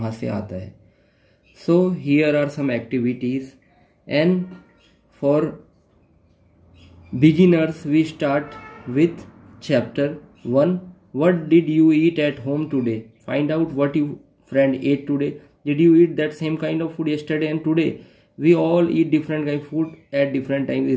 से आता है. So here are some activities, and for beginners we start with chapter 1. What did you eat at home today? Find out what your friend ate today. Did you eat that same kind of food yesterday and today? We all eat different kind of food at different times,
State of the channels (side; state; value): both; identical; correlation 1.00